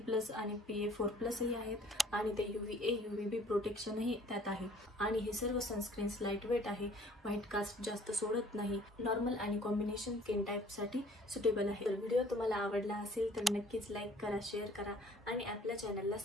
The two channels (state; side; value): normal; both; correlation 0.55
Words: आणि PA4+ ही आहेत आणि ते UVA UVB प्रोटेक्शनही त्यात आहे आणि हे सर्व सनस्क्रीन्स लाईट वेट आहे, व्हाईट कास्ट जास्त सोडत नाही, नॉर्मल आणि कॉम्बिनेशन स्किन टाईपसाठी सुटेबल आहे। तर व्हिडिओ तुम्हाला आवडला असेल तर नक्कीच लाईक करा, शेअर करा आणि आपल्या चॅनलला